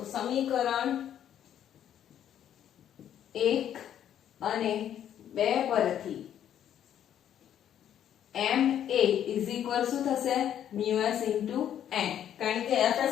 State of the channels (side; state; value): right; quieter; 10.2 dB